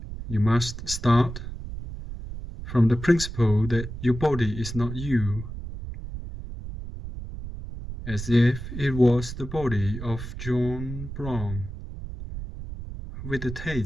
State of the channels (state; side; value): noise; right; rumble, 9 dB below the sound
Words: You must start from the principle that your body is not you, as if it was the body of John Brown, with the